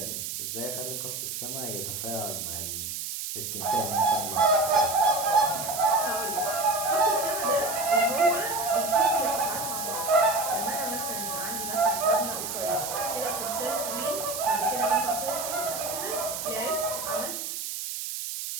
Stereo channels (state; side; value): noise; right; hiss, 5 dB below the sound